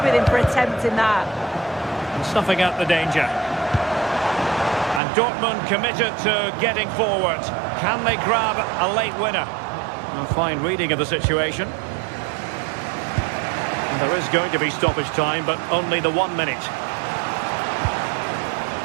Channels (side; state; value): left; drops out; at 5.0 s